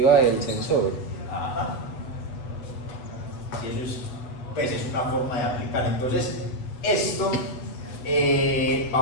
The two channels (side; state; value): right; late; 8.0 ms